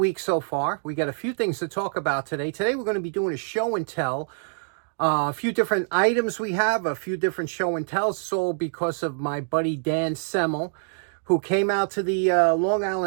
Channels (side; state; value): left; silent; digital silence